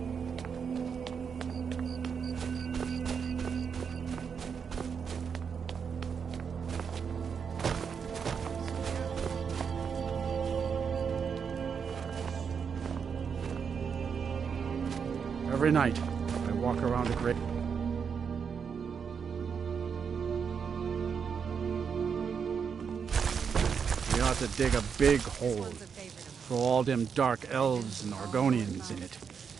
Every night, I walk around a great... We ought to dig a big hole, throw all them dark elves and Argonians in it,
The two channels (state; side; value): quieter; left; 6.5 dB